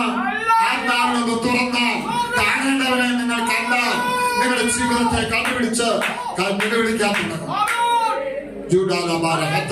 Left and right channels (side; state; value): both; identical; correlation 1.00